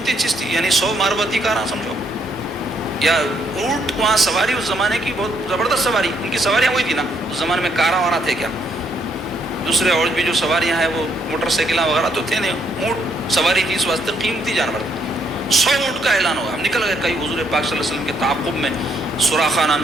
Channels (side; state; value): both; normal; correlation 0.72